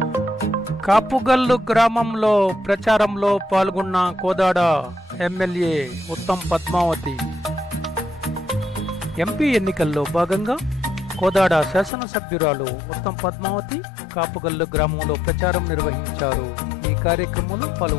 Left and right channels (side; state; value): right; drops out; at 11.9 s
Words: Kapugallu గ్రామంలో ప్రచారంలో పాల్గొన్న కోదాడ ఎమ్మెల్యే ఉత్తమ్ పద్మావతి. ఎంపీ ఎన్నికల్లో భాగంగా కోదాడ శాసనసభ్యురాలు ఉత్తమ్ పద్మావతి కాపుగల్లు గ్రామంలో ప్రచారం నిర్వహించారు. ఈ కార్యక్రమంలో